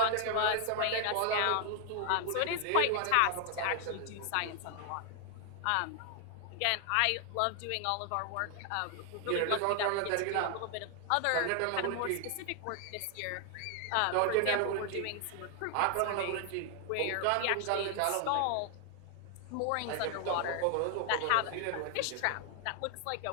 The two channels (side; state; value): both; different; correlation 0.00